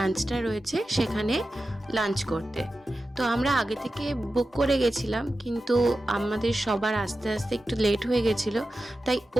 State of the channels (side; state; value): both; normal; correlation 0.93